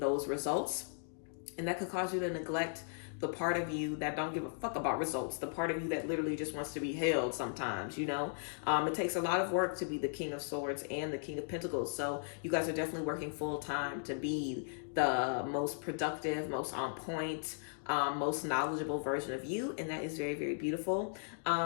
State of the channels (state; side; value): silent; right; digital silence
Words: results. And that could cause you to neglect the part of you that don't give a fuck about results, the part of you that literally just wants to be held sometimes, It takes a lot of work to be the King of Swords and the King of Pentacles. So you guys are definitely working full time to be the most productive, most on point, most knowledgeable version of you. And that is very, very beautiful.